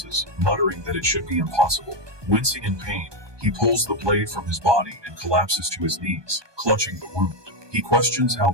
muttering that it should be impossible. Wincing in pain, he pulls the blade from his body and collapses to his knees, clutching the wound. He questions how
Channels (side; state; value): left; late; 1.2 ms